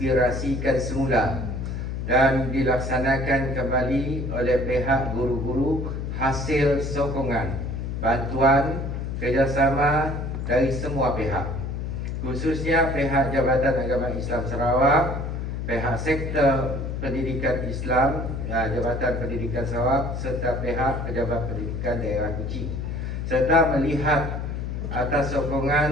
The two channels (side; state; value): left; noise; hum, 4 dB below the sound